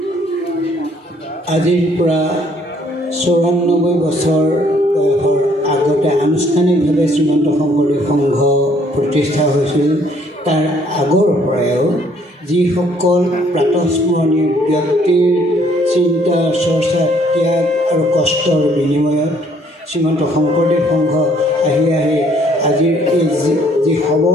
আজিৰ পৰা ৯৪ বছৰ বয়সৰ আগতে আনুষ্ঠানিকভাৱে শ্ৰীমন্ত শংকৰদেৱ সংঘ প্ৰতিষ্ঠা হৈছিল। তাৰ আগৰ পৰাও যিসকল প্ৰাতঃস্মৰণীয় ব্যক্তিৰ চিন্তা, চৰ্চা, ত্যাগ আৰু কষ্টৰ বিনিময়ত শ্ৰীমন্ত শংকৰদেৱ সংঘ আহি আজিৰ এই যি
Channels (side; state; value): both; normal; correlation 0.64